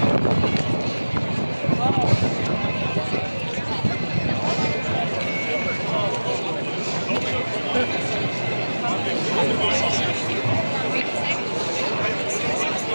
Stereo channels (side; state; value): both; inverted; correlation -1.00